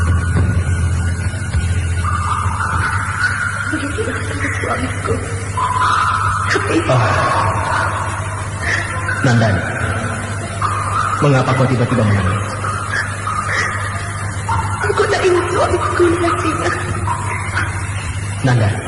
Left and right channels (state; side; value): identical; both; correlation 1.00